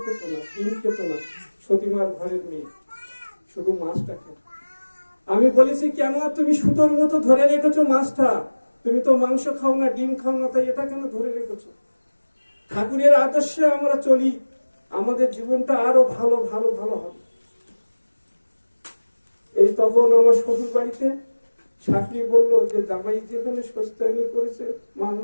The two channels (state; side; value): inverted; both; correlation -1.00